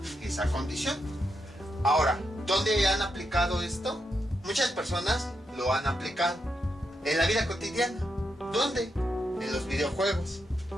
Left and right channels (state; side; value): normal; both; correlation 0.83